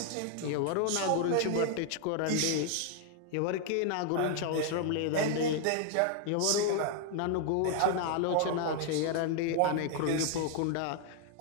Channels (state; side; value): different; both; correlation 0.00